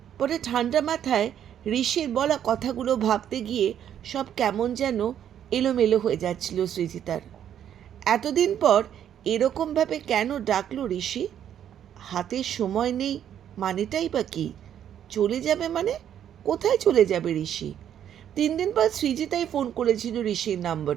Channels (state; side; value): quieter; left; 9.9 dB